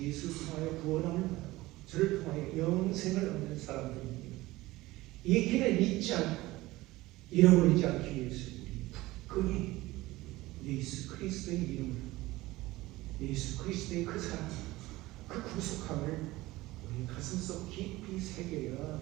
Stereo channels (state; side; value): quieter; left; 18.8 dB